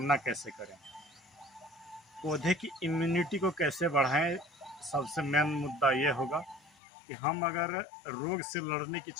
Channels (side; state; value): right; drops out; at 6.8 s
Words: कैसे करें, पौधे की इम्यूनिटी को कैसे बढ़ाएं। सबसे मेन मुद्दा ये होगा कि हम अगर रोग से लड़ने की